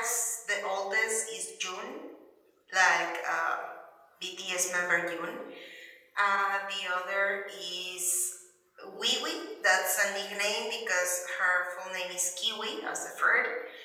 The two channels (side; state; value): both; identical; correlation 1.00